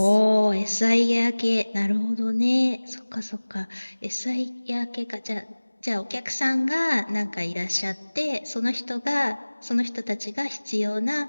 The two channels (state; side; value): inverted; both; correlation -1.00